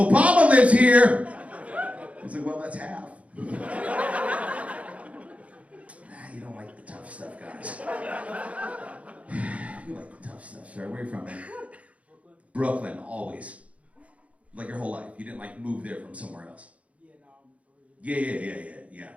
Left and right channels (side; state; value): left; late; 0.065 ms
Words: lives here!" I was like, "Well, that's half." You don't like the tough stuff, guys. You like the tough stuff, sir. Where are you from, man? Brooklyn, always. Like your whole life. You didn't like move there from somewhere else. Yeah.